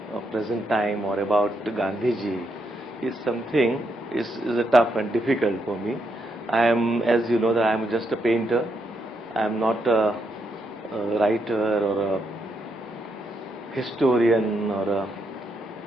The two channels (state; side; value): normal; both; correlation 0.79